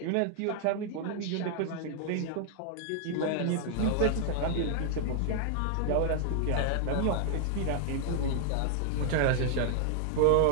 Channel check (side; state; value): both; different; correlation 0.00